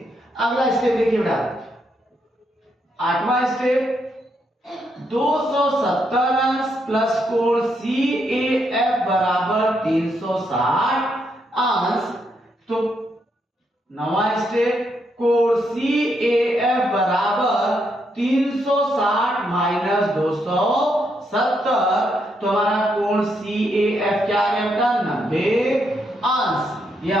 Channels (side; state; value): both; normal; correlation 0.78